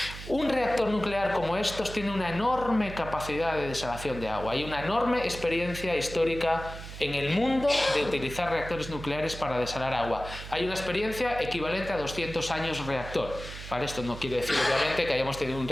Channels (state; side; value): noise; right; hum, 11 dB below the sound